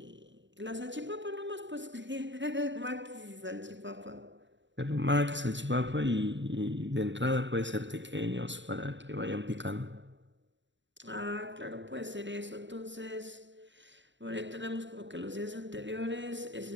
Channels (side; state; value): left; late; 0.54 ms